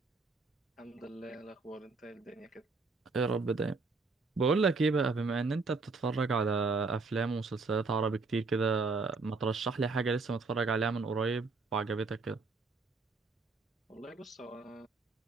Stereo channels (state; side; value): quieter; left; 4.1 dB